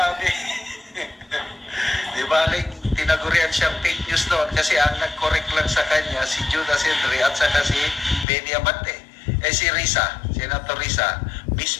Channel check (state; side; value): drops out; right; at 8.2 s